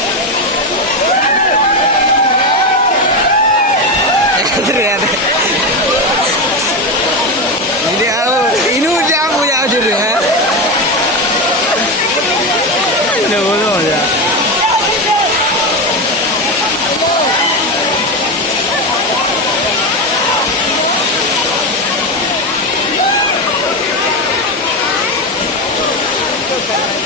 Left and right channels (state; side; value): normal; both; correlation 0.15